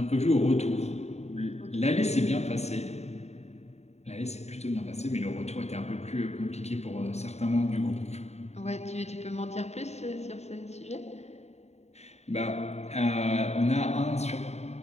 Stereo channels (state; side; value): late; right; 0.32 ms